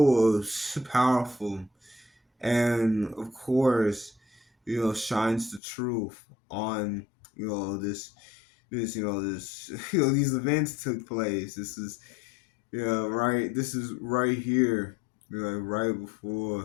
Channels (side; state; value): right; drops out; at 5.6 s